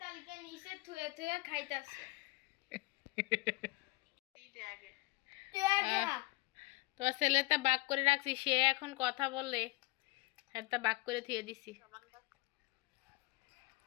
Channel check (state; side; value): quieter; right; 22.6 dB